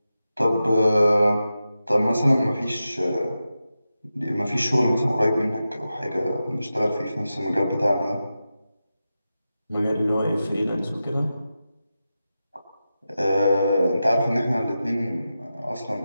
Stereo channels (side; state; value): both; inverted; correlation -0.92